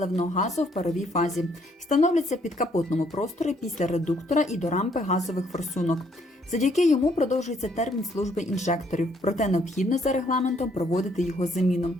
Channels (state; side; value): normal; both; correlation 0.68